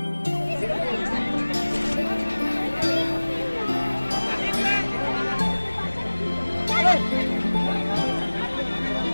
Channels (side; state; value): both; inverted; correlation -1.00